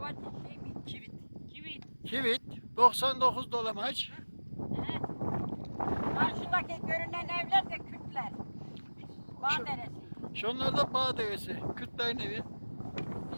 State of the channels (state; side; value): inverted; both; correlation -1.00